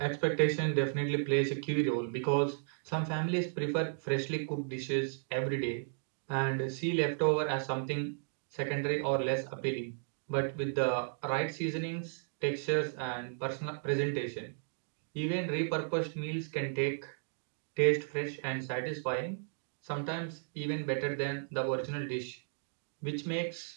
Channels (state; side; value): silent; left; digital silence